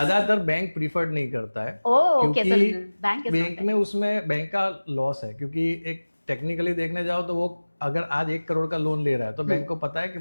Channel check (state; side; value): inverted; both; correlation -1.00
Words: बैंक प्रीफर्ड नहीं करता है क्योंकि बैंक में उसमें बैंक का लॉस है, क्योंकि एक टेक्निकली देखने जाओ तो वो अगर आज 1 करोड़ का लोन ले रहा है तो बैंक को पता है कि